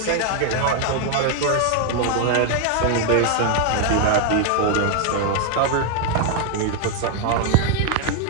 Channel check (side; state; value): both; different; correlation 0.01